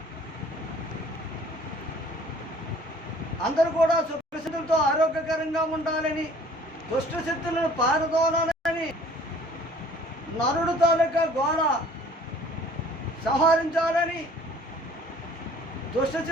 అందరూ కూడా సుఖశక్తులతో ఆరోగ్యకరంగా ఉండాలని, దుష్టశక్తులను పారదోలాలని, నరుడు తాలూకా గోళ సంహరించాలని,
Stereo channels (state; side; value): normal; both; correlation 0.53